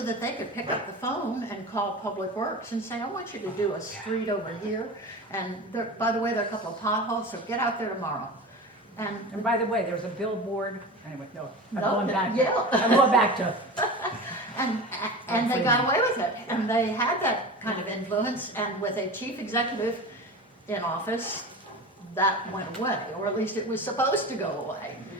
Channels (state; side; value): normal; both; correlation 0.31